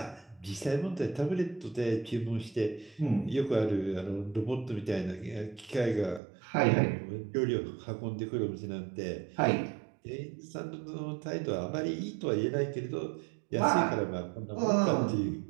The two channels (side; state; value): left; drops out; at 6.2 s